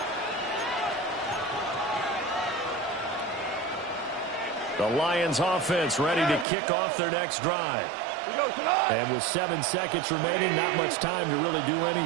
The Lions offense ready to kick off their next drive. And with 7 seconds remaining, not much time to really do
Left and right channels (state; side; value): drops out; left; at 6.5 s